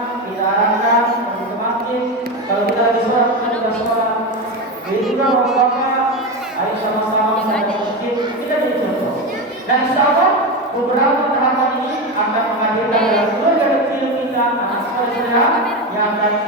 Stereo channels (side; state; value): both; normal; correlation 0.17